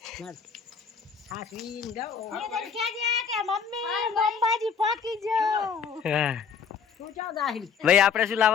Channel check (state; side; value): quieter; right; 6.4 dB